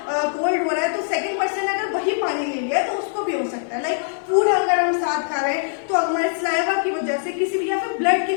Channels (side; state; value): right; silent; 60 dB below the other